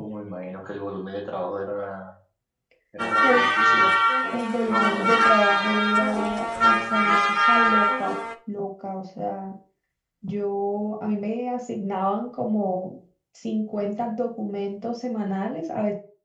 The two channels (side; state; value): both; identical; correlation 1.00